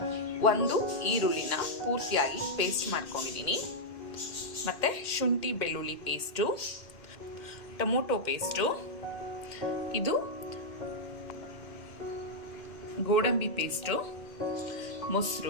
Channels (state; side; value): late; right; 2.1 ms